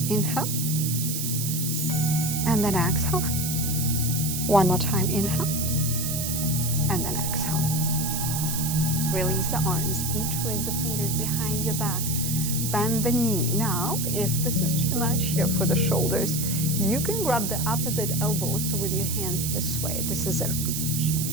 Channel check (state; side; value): noise; right; hiss, 2 dB below the sound